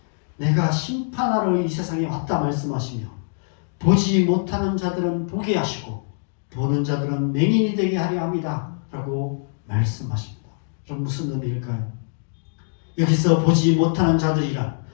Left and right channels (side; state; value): right; silent; digital silence